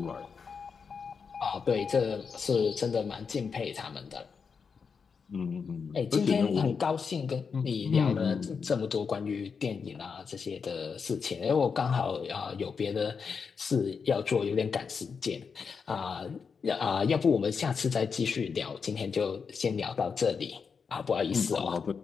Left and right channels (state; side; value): quieter; right; 5.8 dB